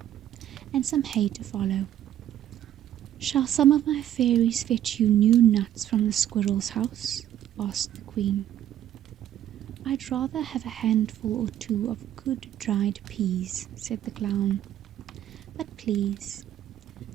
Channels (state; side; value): quieter; left; 11.6 dB